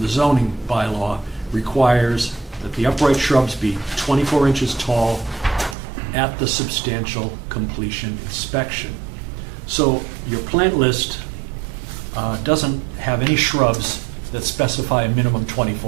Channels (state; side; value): drops out; left; at 5.8 s